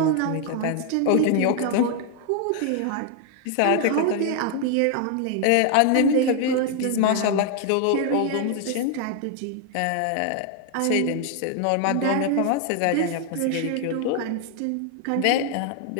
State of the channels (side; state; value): both; different; correlation 0.00